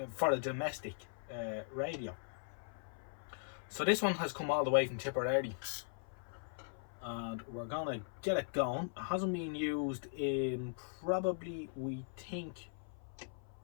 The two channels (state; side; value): silent; right; 51 dB below the other